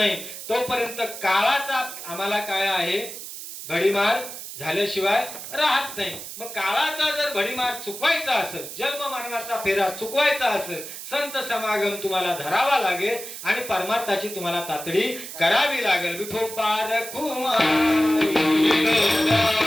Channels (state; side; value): noise; right; hiss, 10 dB below the sound